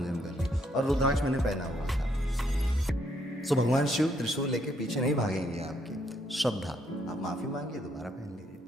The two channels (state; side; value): normal; both; correlation 0.72